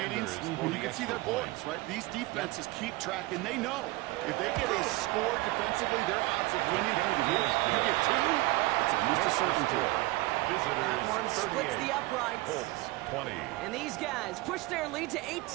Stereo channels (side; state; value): left; quieter; 20.9 dB